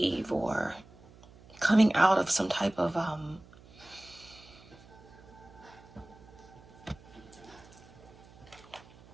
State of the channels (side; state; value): right; noise; hum, 23 dB below the sound